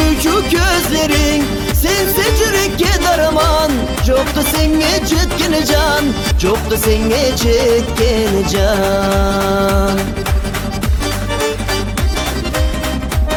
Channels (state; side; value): identical; both; correlation 1.00